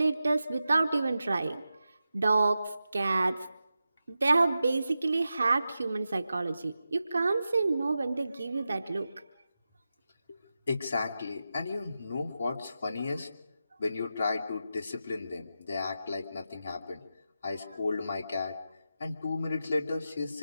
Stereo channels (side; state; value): both; inverted; correlation -0.91